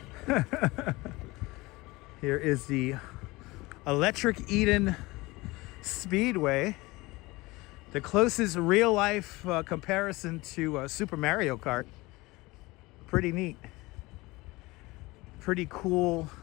Here is the Electric Eden Speedway. The closest real life comparison to Super Mario Kart. Pretty neat. Pretty cool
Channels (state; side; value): quieter; right; 21.8 dB